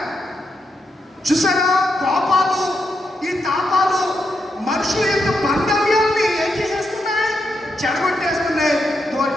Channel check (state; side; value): normal; both; correlation 0.83